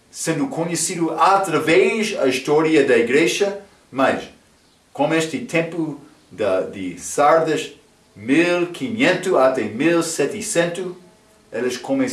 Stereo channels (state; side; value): identical; both; correlation 1.00